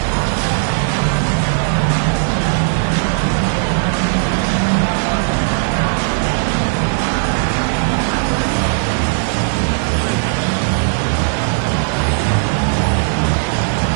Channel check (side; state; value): left; silent; digital silence